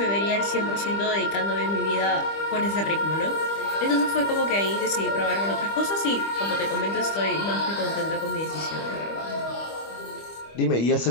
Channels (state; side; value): late; right; 25 ms